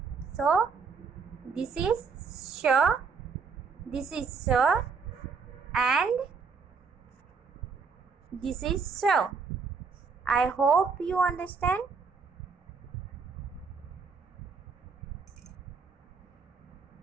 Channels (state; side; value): quieter; left; 5.3 dB